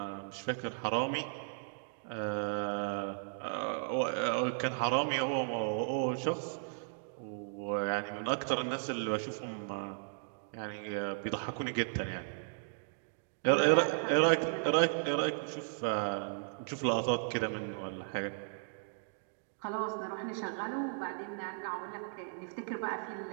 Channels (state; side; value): silent; left; digital silence